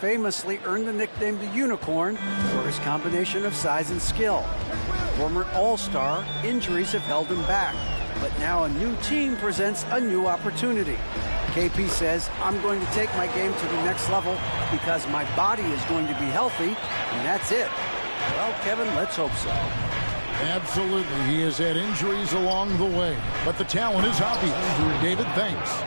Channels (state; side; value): inverted; both; correlation -1.00